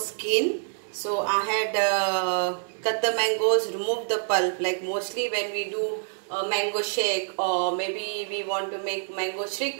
So I had cut the mangoes, remove the pulp, like mostly when we do a mango shake or maybe we want to make mango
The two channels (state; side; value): silent; left; digital silence